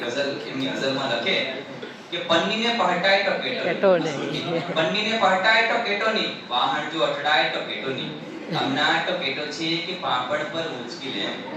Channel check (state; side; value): identical; both; correlation 1.00